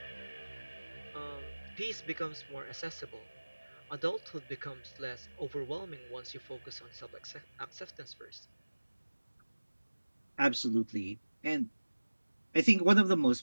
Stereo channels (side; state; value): both; inverted; correlation -1.00